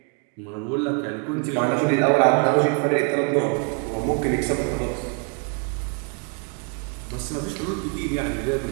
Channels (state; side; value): quieter; left; 38.5 dB